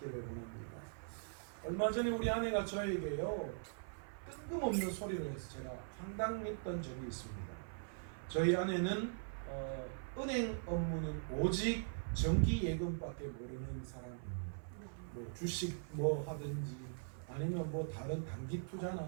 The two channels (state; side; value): silent; left; 50 dB below the other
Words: 원합니다. 얼마 전에 우리 아내가 저에게요 뜬금없는 소리를 해서 제가 황당했던 적이 있습니다. 저희 아내는 은행 업무는 오직 정기예금밖에 모르는 사람입니다. 뭐 주식 뭐 하든지 아니면 뭐 다른 단기